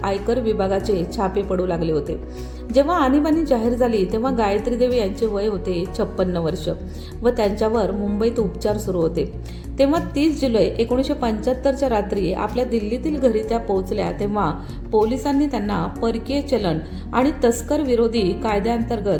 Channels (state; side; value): identical; both; correlation 1.00